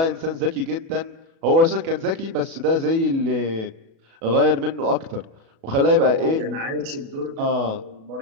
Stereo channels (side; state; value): left; late; 36 ms